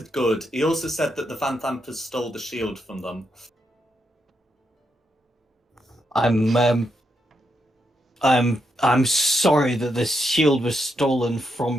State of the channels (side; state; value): both; normal; correlation 0.81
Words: good. He also said that the Van Dampers stole the shield from them. I'm sorry that this shield was stolen